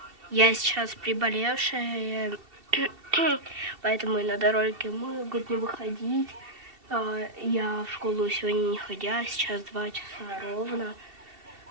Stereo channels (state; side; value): late; left; 2.7 ms